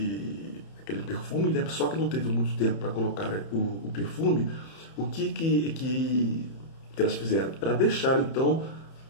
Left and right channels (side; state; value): right; late; 31 ms